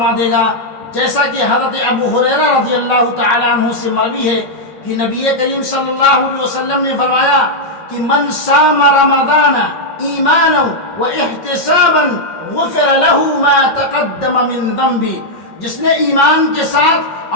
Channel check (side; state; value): right; late; 5.4 ms